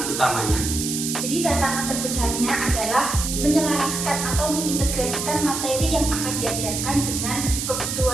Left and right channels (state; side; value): noise; right; hiss, 3 dB below the sound